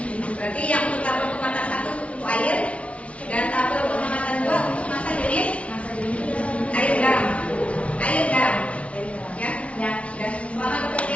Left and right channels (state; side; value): late; right; 0.063 ms